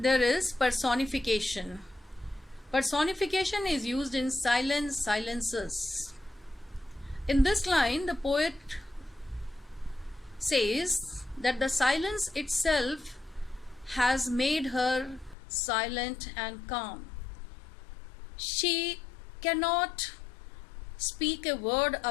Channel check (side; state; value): right; drops out; at 15.4 s